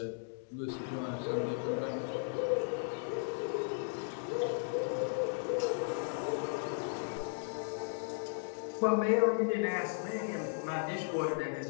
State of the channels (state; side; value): silent; right; digital silence